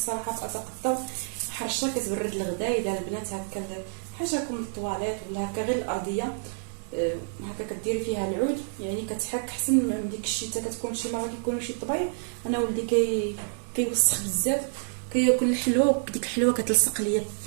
في اتقطع حرشه كتبرد الغدا. اذا البنات هكا حاجه كم الطواليت ولا هكا غير الارضيه هكا كديري فيها العود، يعني كتحك احسن من ديك الشتاء. كتكون شي مره كيكونوا شي طبيعي. انا ولدي كيوسخ بزاف، كياكل الحلوه وديك الحلوه كتلصق ليا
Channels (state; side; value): silent; left; digital silence